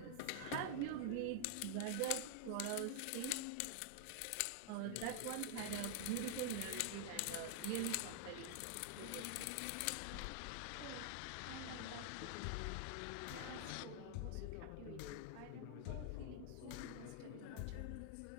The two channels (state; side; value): different; both; correlation 0.00